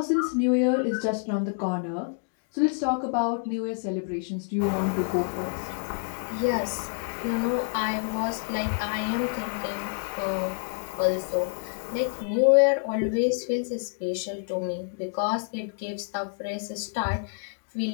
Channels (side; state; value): right; silent; 60 dB below the other